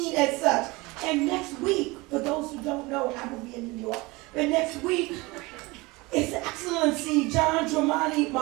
as such. And next week, for those who don't know, I will be in New York, but next week, His Excellency John Dramani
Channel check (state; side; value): quieter; left; 23.5 dB